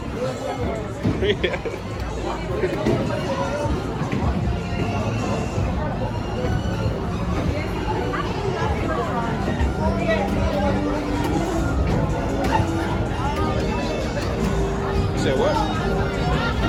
Freak at it. You said what?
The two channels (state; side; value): identical; both; correlation 1.00